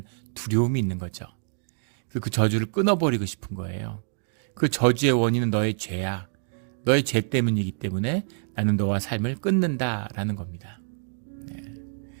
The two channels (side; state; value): left; silent; digital silence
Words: 두려움이 있는 거죠. 그 저주를 끊어버리고 싶은 거예요. 그 저주의 원인은 너의 죄야. 너의 죄 때문이기 때문에 나는 너와 삶을 끊는다라는 겁니다.